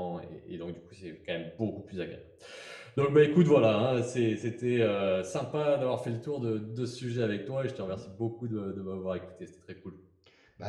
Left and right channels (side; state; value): both; identical; correlation 1.00